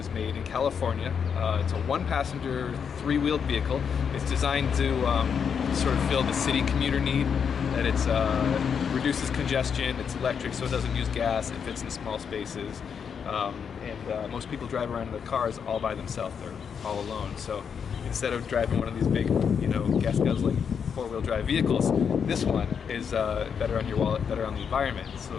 made in California. It's a one-passenger, three-wheeled vehicle. It's designed to sort of fill the city commuter need. That it's reduces congestion. It's electric, so it doesn't use gas. It fits in small spaces. And most people drive around in their cars all by themselves. They're all alone. So instead of driving one of these big, gas guzzling four-wheel drive vehicles, this one is better on your wallet, better on the environment.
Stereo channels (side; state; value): right; quieter; 6.9 dB